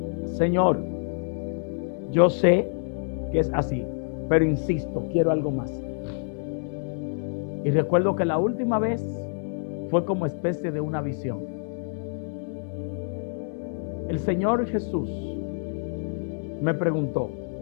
Señor, yo sé que es así, pero insisto, quiero algo más. Y recuerdo que la última vez fue como especie de una visión. El Señor Jesús me preguntó:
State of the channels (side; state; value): right; silent; digital silence